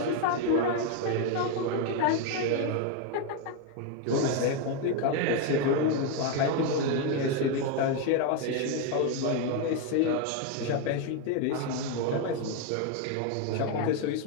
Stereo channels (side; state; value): both; different; correlation 0.01